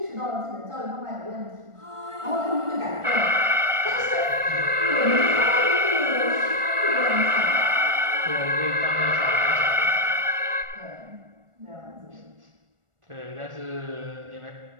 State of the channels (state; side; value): late; left; 1.4 ms